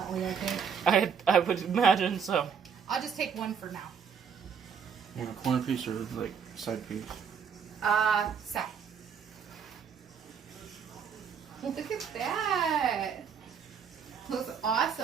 I think. I would imagine so. I'll just take one for now. You want a corner piece or like side piece? Side. Look at that. Looks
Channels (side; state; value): left; quieter; 6.9 dB